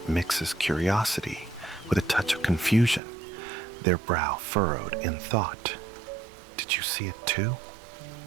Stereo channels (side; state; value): left; drops out; at 3.0 s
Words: mixes curiosity with a touch of confusion, their brow furrowed in thought. "Did you see it too?"